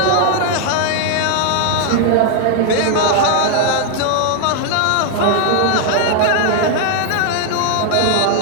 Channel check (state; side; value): different; both; correlation 0.00